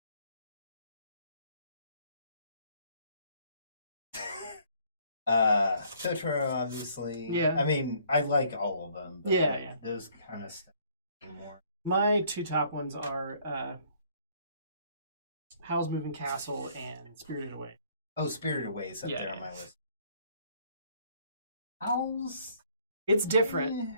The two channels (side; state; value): both; inverted; correlation -0.62